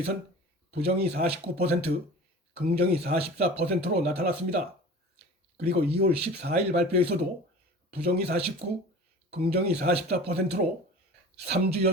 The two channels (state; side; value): normal; both; correlation 0.39